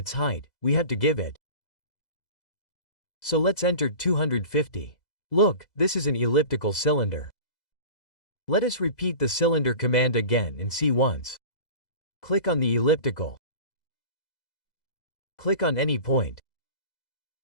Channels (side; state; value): right; late; 2.0 ms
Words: height, we have to give it. So let's enter 250. Look, this is an elliptical cylinder. Let us repeat the cylinder command again and see once. Click on the elliptical. Click on any point.